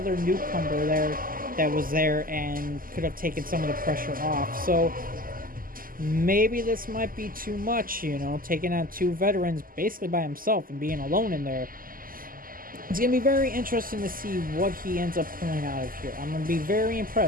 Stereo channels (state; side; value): late; left; 0.41 ms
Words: newcomer there that was there and could have taken some of the pressure off. So maybe this might be too much, taking on two veterans basically by himself and being alone in there. It's going to be very interesting to see what he ends up pulling out of here. I'm going to be very